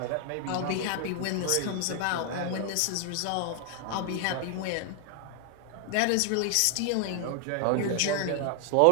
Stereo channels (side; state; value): both; different; correlation 0.00